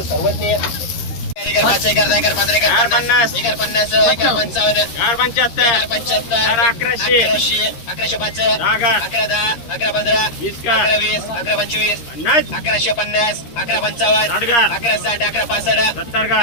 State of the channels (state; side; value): late; right; 13 ms